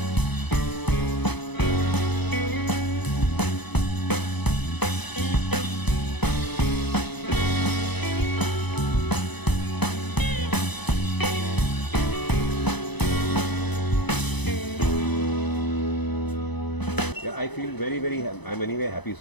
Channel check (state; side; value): late; right; 0.99 ms